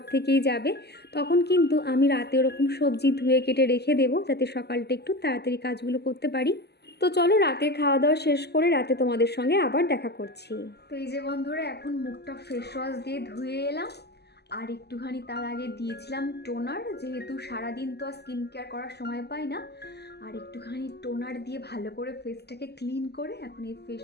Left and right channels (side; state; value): right; late; 0.48 ms